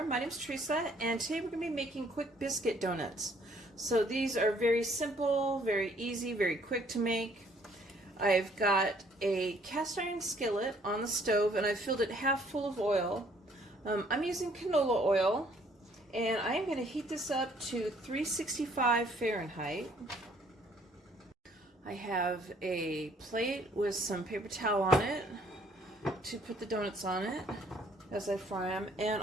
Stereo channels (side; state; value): both; normal; correlation 0.62